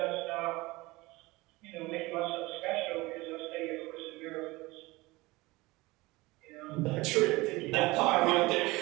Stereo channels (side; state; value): left; quieter; 21.5 dB